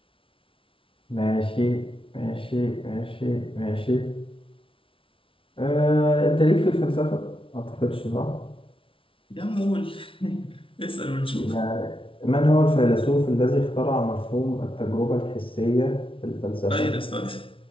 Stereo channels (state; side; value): late; right; 0.25 ms